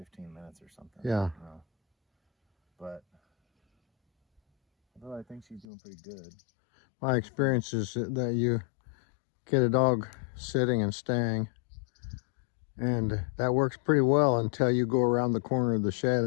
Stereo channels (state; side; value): drops out; right; at 5.7 s